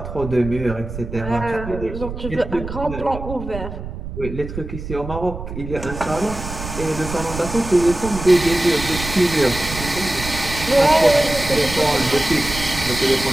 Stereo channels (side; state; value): right; noise; rumble, 9 dB below the sound